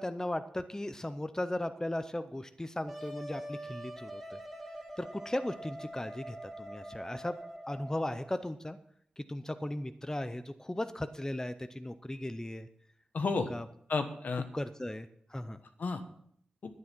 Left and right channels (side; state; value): both; normal; correlation 0.95